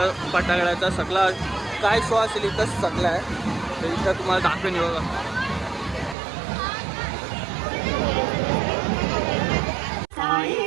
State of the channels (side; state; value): left; drops out; at 6.2 s